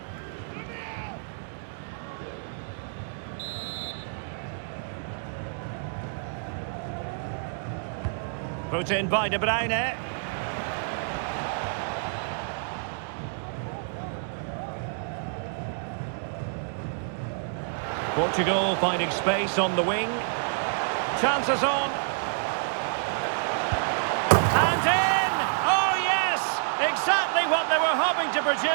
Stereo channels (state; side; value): silent; left; digital silence